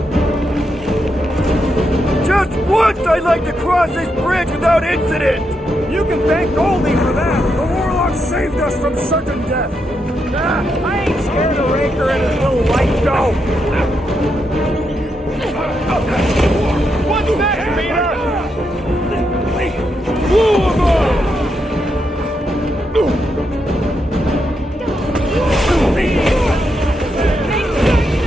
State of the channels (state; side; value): normal; both; correlation 0.82